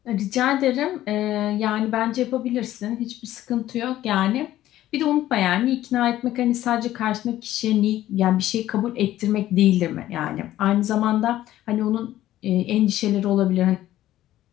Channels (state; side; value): quieter; right; 13.8 dB